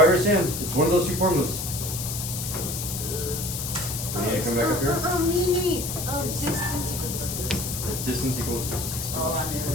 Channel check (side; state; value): left; noise; hiss, 5 dB below the sound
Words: your stand. It's one of those two formulas. We need to come back up here. Me. Distance equals distance. It's distance equals distance. Oh, I knew